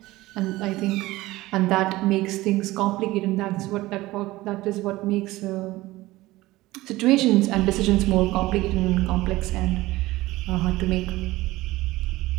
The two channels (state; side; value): quieter; left; 18.4 dB